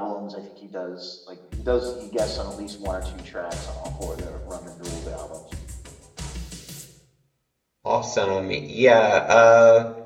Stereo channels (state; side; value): identical; both; correlation 1.00